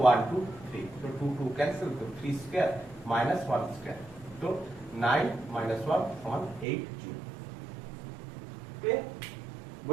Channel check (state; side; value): drops out; left; at 6.7 s